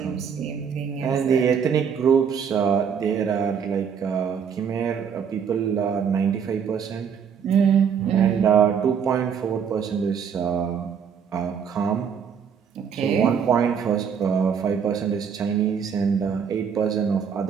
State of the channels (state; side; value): quieter; left; 7.2 dB